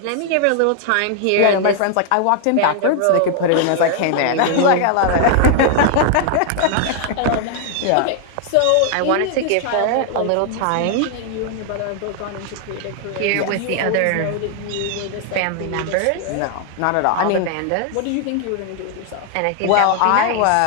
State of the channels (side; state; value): both; different; correlation 0.00